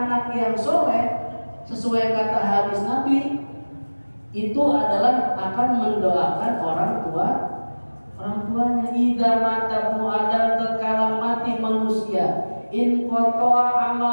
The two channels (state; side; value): inverted; both; correlation -1.00